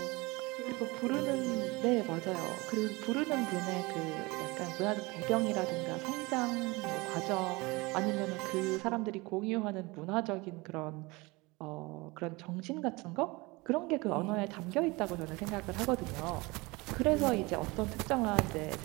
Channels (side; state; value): left; quieter; 24.2 dB